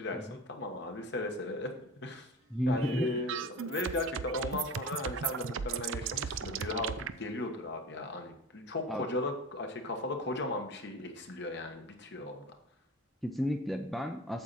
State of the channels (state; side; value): normal; both; correlation 0.33